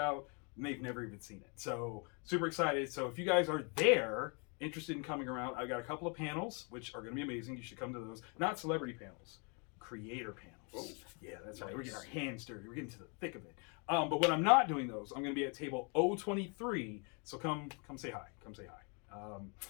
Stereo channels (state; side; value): quieter; right; 35.2 dB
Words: and they've never even seen it. So, super excited. So, if you guys are there, interested in coming around, I've got a couple of panels, which are going to be amazing. You should come to those. Not celebrity panels. Creator panels. Oh, yeah, that's right. We're getting our hands dirty. We're getting to the thick of it. But when I'm not doing those, I'm going to be at table 023. So come say hi. Come say hi.